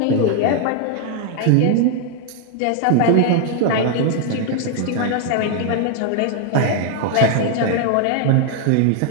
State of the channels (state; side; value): different; both; correlation 0.00